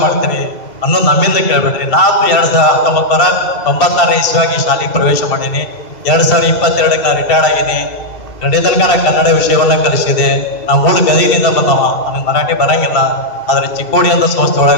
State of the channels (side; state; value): right; late; 2.7 ms